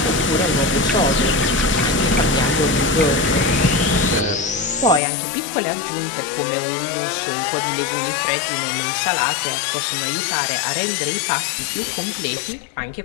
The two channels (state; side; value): drops out; right; at 5.0 s